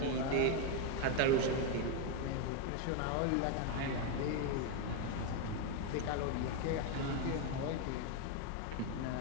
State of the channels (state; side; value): different; both; correlation 0.01